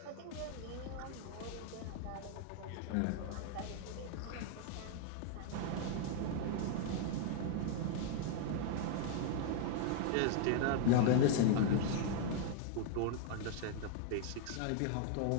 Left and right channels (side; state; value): both; different; correlation 0.00